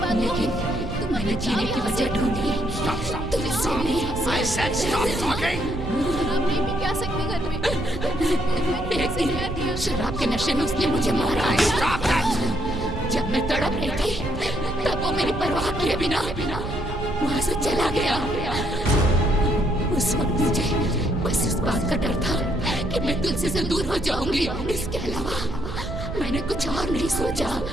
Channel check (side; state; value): right; noise; rumble, 7 dB below the sound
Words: लेकिन मैंने जीने की वजह ढूंढी। तुलसी ने शराब नहीं पी के आ सकते घर में। एक दिन शराब के नशे में उसने मुझे मारा। जब मैं तड़प रही थी तब वो मेरी परवाह किए बिना वहां से चला गया। उस वक्त मुझे बस इस बात का डर था कि मैं तुलसी से दूर हो जाऊंगी। इसके अलावा मैंने कुछ और नहीं सोचा।